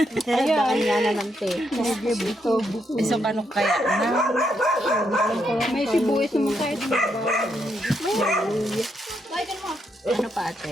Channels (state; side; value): normal; both; correlation 0.78